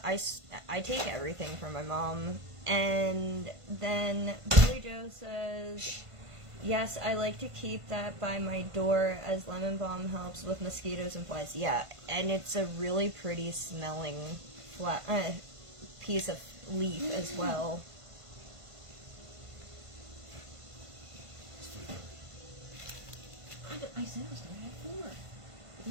take everything from my mom. And then Billy Joe says, yes, I like to keep that by my door as lemon balm helps with mosquitoes and flies. Yeah, and it's a really pretty smelling piece of leaf as well. I said I was going to have 4. But you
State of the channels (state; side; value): late; left; 1.5 ms